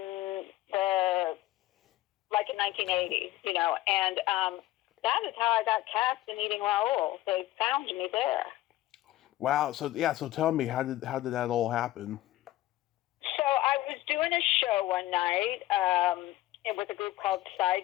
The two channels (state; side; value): quieter; right; 15.8 dB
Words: the 1980, and that is how I got cast in Eating Raoul. They found me there. Wow. So tell me, how did that all happen? So I was doing a show one night with a group called